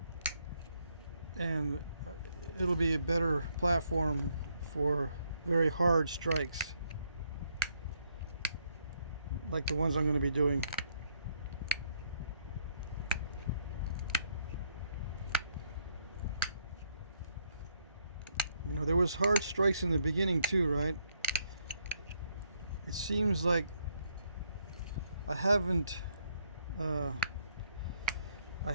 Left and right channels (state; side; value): inverted; both; correlation -0.73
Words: and it'll be a better platform for very hard strikes like the ones I'm going to be doing. You know, there was hard strikes in the beginning too, right? It seems like I haven't let